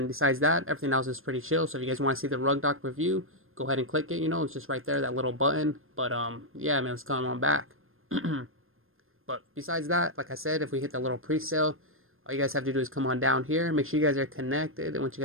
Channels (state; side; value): late; left; 0.60 ms